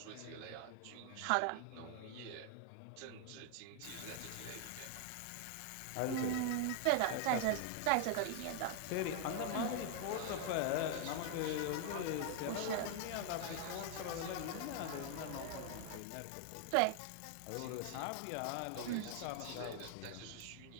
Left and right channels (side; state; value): both; different; correlation 0.00